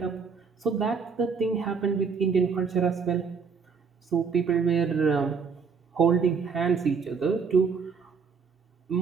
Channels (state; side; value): quieter; left; 5.6 dB